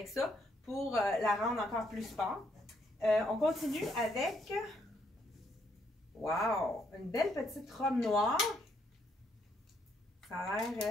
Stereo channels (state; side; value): normal; both; correlation 0.73